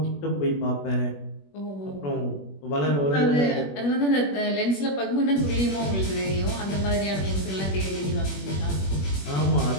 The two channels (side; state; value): right; late; 21 ms